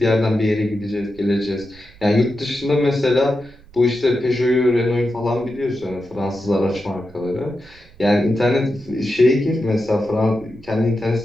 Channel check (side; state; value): right; noise; rumble, 24 dB below the sound